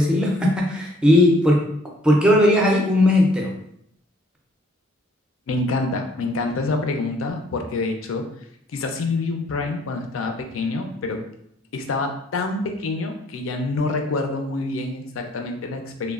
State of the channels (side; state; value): both; normal; correlation 0.62